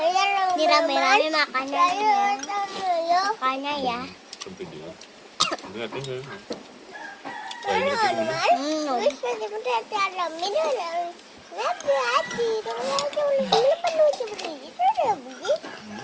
ini rame-rame makannya ya.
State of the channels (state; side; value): identical; both; correlation 1.00